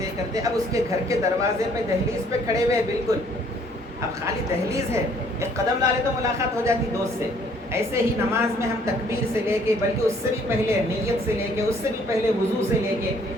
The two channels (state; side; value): normal; both; correlation 0.61